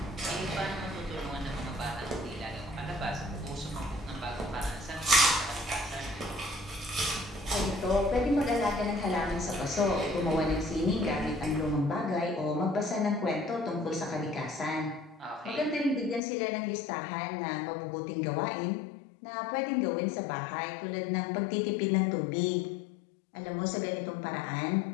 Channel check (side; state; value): right; drops out; at 16.2 s